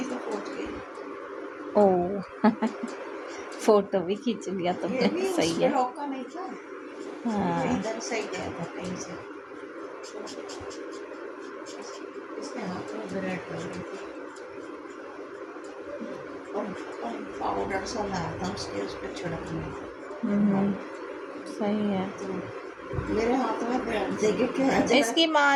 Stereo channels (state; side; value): identical; both; correlation 1.00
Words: से पहुंच गई। ओ फोटो भी खींच लिया ये तुमने, भी सही उसके है। रोका नहीं था, ये हाँ इधर से गया था कहीं से। इसके हाथ में ब्रेड लगी थी और पाउडर सा लाया था उसके उस पर छिड़कने। सही है। तो मेरे हाथ में ब्रेड देके क्या इसकी